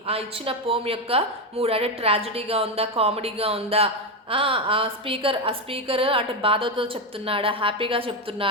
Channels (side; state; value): both; normal; correlation 0.10